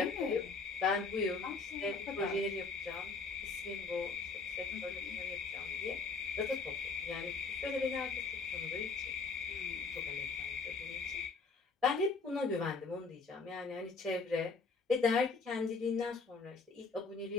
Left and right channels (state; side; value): quieter; right; 4.3 dB